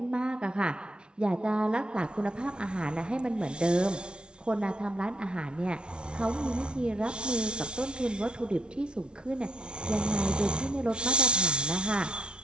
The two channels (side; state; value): left; late; 0.056 ms